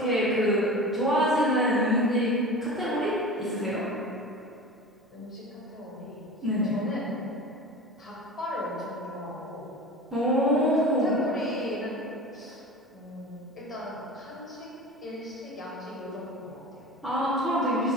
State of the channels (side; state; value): both; normal; correlation 0.34